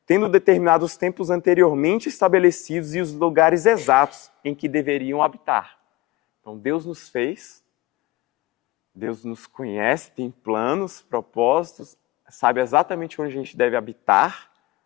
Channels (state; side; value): quieter; right; 19.3 dB